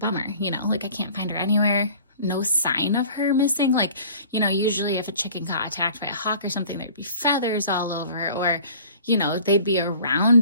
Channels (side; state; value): both; inverted; correlation -0.47